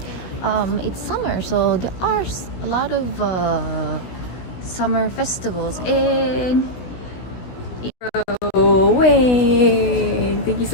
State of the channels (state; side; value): late; right; 16 ms